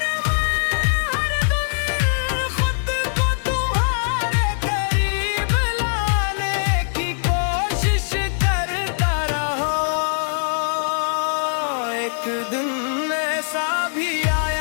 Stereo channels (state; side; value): silent; right; digital silence